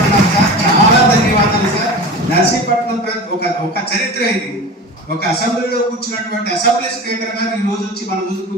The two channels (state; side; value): normal; both; correlation 0.32